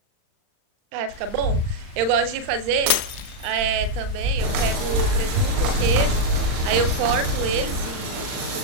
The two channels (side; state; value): left; late; 39 ms